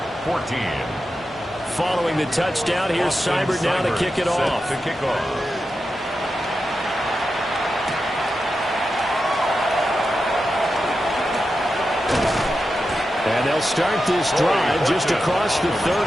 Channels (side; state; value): both; normal; correlation 0.90